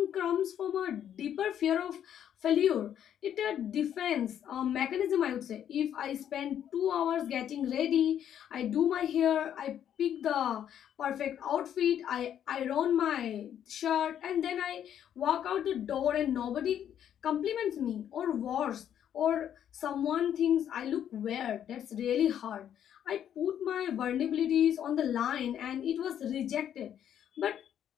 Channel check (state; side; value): quieter; right; 9.8 dB